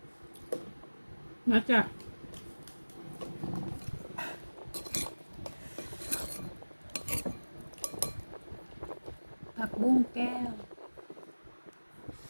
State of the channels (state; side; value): inverted; both; correlation -1.00